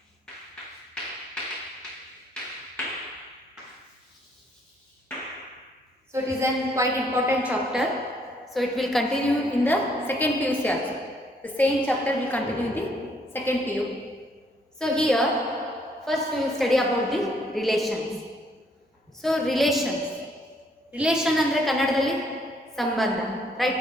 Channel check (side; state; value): both; normal; correlation 0.67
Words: So it is a quite important chapter. So it will continue in the second PUC also. The same chapter will continue in the second PU. So here first we will study about the relations. So relations. Relation andre kannadadalli sambandha, right?